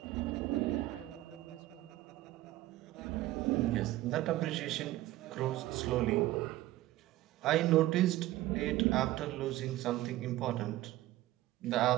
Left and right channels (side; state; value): left; quieter; 16.2 dB